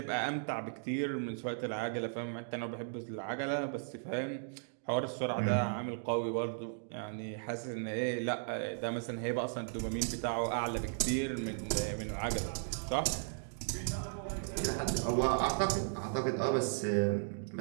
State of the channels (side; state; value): left; silent; digital silence